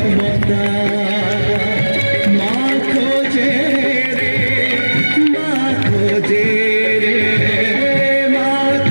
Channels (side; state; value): both; inverted; correlation -1.00